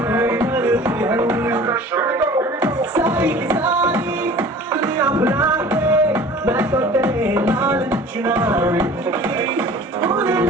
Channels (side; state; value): both; normal; correlation 0.44